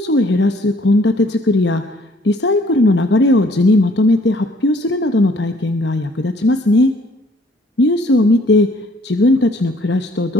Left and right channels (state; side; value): normal; both; correlation 0.60